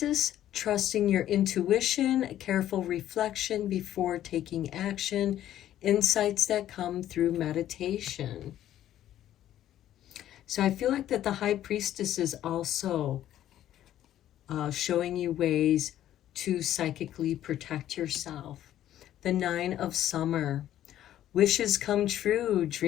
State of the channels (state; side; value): quieter; right; 12.2 dB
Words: Trusting your intuition, careful reflection before taking action insights that come through meditation. So I feel like that the High Priestess is also showing you ways to psychically protect yourself. The Nine of Summer, wishes come true,